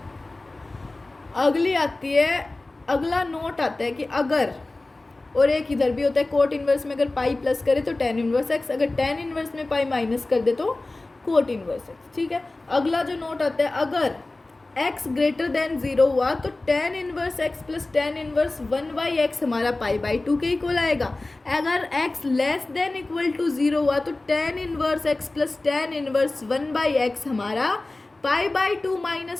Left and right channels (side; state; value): right; quieter; 3.0 dB